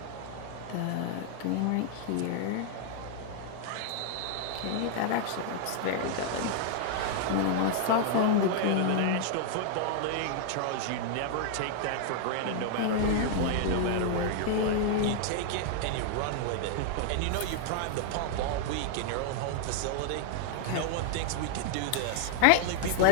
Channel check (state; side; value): different; both; correlation 0.00